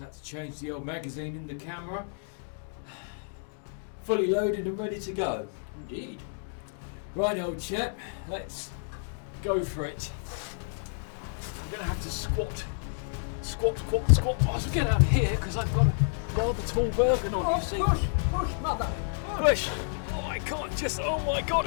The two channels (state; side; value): silent; right; digital silence